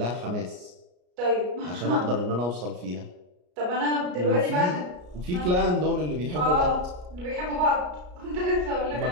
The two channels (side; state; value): left; late; 33 ms